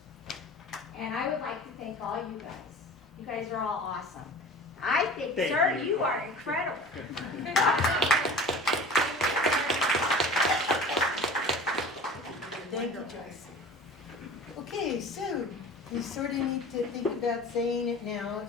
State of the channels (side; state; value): both; normal; correlation 0.40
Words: And I would like to thank all you guys. You guys are all awesome. I think, sir, you are incredible. Thank you, Joyce. Okay, so we sort of need to think about saying it now